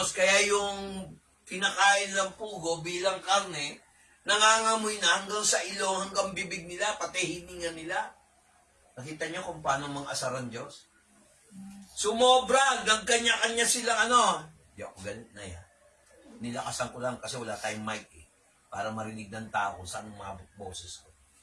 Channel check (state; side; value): identical; both; correlation 1.00